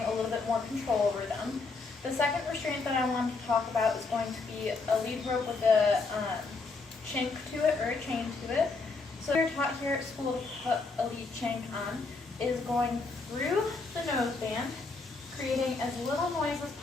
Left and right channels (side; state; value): right; quieter; 3.9 dB